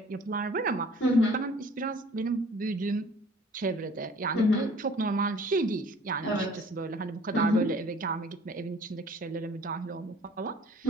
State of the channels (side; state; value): both; normal; correlation 0.51